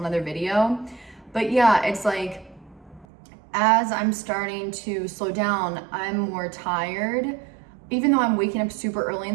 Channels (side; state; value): left; drops out; at 3.1 s